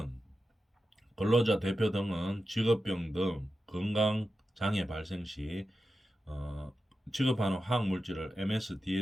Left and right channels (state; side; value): normal; both; correlation 0.91